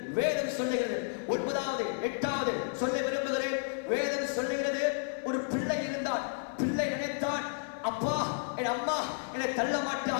9வது 8வது சொல்ல விரும்புகிறேன். வேதம் சொல்லுகிறது, ஒரு பிள்ளை இருந்தான். பிள்ளை நினைத்தான், அப்பா என் அம்மா என்னை தள்ள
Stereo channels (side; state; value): right; silent; digital silence